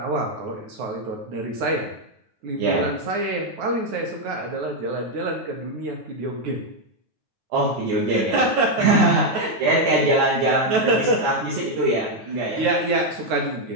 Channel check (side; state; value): left; late; 9.3 ms